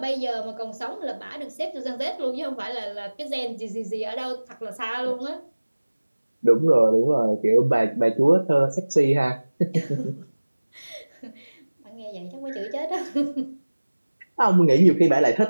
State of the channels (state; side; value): inverted; both; correlation -1.00